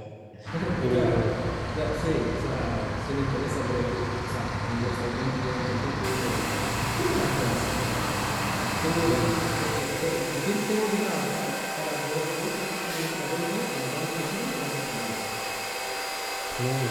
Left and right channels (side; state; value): both; identical; correlation 1.00